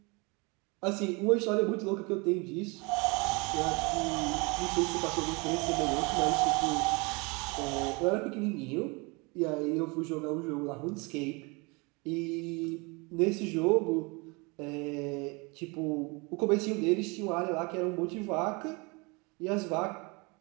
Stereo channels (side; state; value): left; quieter; 28.5 dB